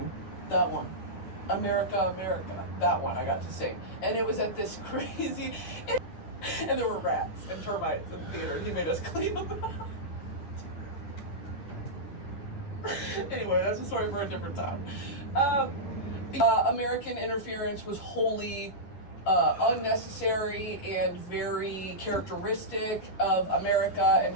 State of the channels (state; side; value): late; right; 11 ms